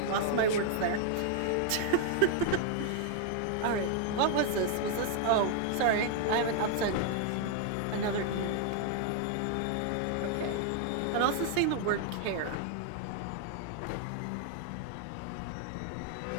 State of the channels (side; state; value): both; different; correlation 0.00